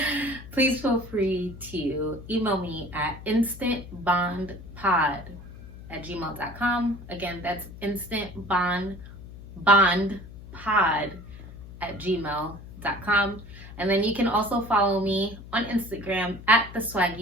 please feel free to email me at instantbondpod@gmail.com. Again, that's instantbondpod@gmail.com. And then you can also follow me on Instagram at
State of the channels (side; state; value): left; noise; hum, 15 dB below the sound